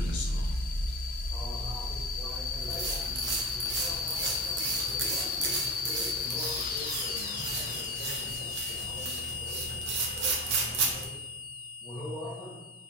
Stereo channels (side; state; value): both; normal; correlation 0.26